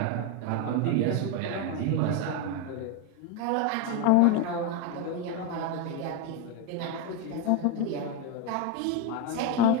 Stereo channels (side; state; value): both; different; correlation 0.02